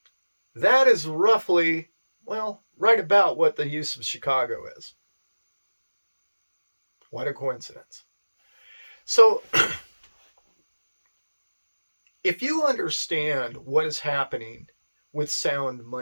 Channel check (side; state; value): both; inverted; correlation -1.00